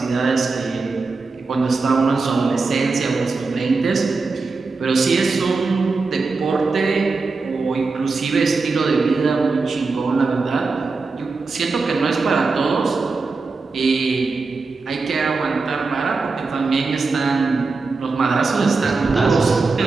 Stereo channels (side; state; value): left; quieter; 4.1 dB